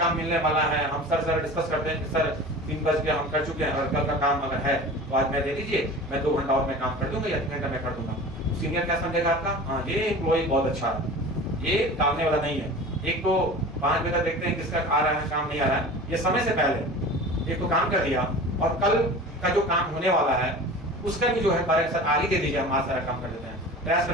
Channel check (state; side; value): normal; both; correlation 0.37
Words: मिलने वाला है, हम सर डिस्कस करते हैं कि सर 3 बज के हम कर चुके हैं और कल का काम अगर है तो आज मैं दे दीजिए, मैं 2 घंटा और मैं काम कर दूंगा या 3 घंटा मैं कर दूंगा। सीनियर क्या समझेगा आपका, हाँ ये एम्प्लॉय बहुत अच्छा है, ये टालने वाला नहीं है। एक तो 5 बजे तक देखते हैं किसका आ रहा है काम नहीं आ रहा है, ये समय से पहले एक तो काम कर दिया, और कल का जो काम होने वाला है उसका भी जो है बारे सर आगे दे दीजिए, हम आज सारा काम कर देते हैं, प्रयास